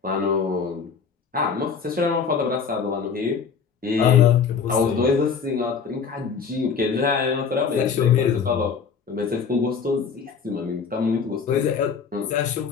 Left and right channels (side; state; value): right; quieter; 6.1 dB